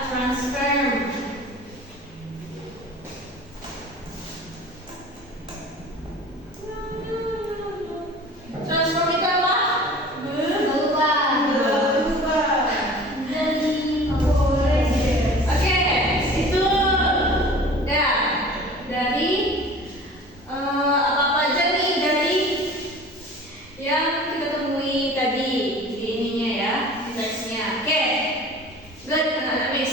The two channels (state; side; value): normal; both; correlation 0.42